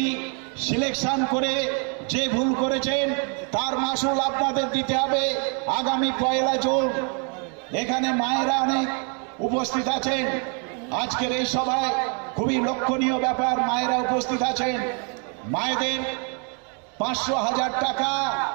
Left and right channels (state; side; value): quieter; left; 39.1 dB